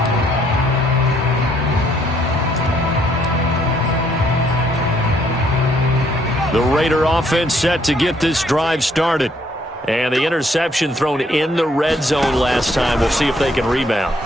The Raider offense set to get this drive started. And the interception thrown in the red zone last time. We'll see if they can rebound.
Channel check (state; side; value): normal; both; correlation 0.68